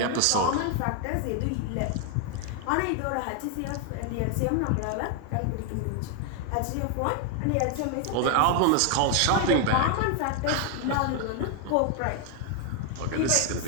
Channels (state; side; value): different; both; correlation 0.00